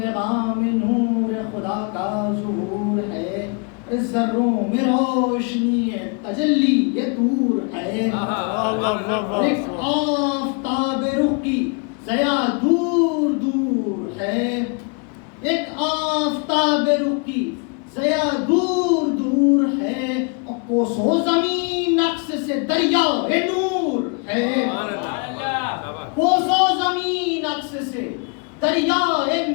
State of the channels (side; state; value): right; quieter; 35.6 dB